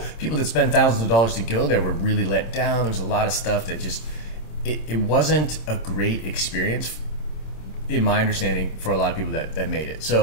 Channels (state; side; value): late; right; 26 ms